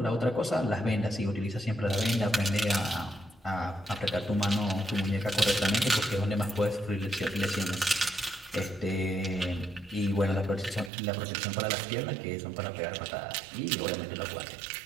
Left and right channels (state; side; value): drops out; left; at 10.9 s